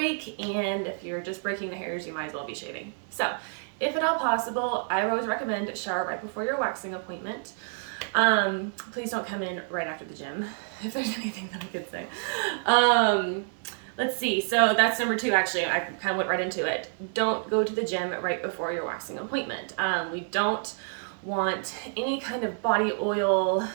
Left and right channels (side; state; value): left; silent; 59 dB below the other